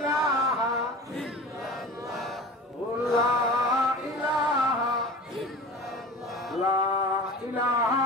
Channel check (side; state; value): both; normal; correlation 0.36